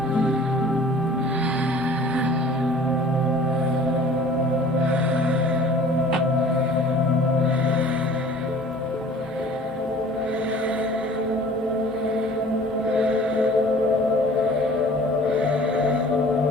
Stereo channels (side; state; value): both; normal; correlation 0.48